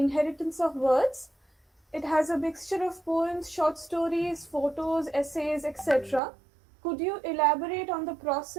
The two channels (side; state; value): left; drops out; at 6.2 s